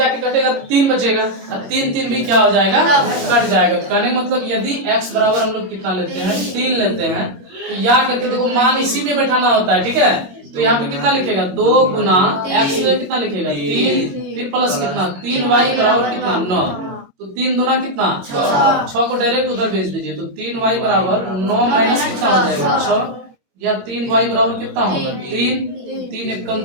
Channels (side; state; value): left; late; 21 ms